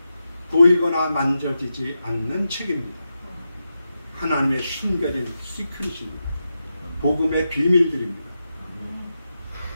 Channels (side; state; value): both; inverted; correlation -0.88